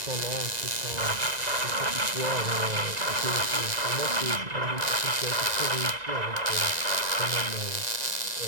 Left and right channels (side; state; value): left; late; 1.9 ms